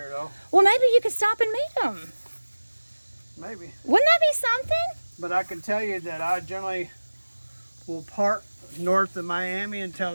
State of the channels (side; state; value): both; inverted; correlation -1.00